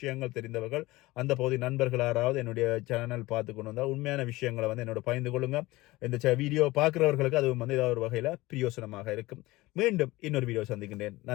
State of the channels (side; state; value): right; quieter; 19.7 dB